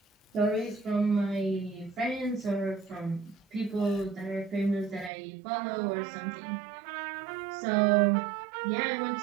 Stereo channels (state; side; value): drops out; left; at 5.1 s